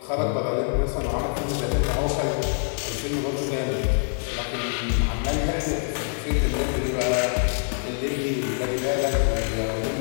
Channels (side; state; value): right; silent; 62 dB below the other